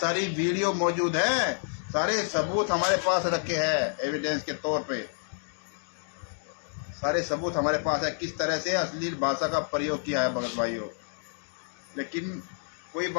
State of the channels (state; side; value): silent; right; 56 dB below the other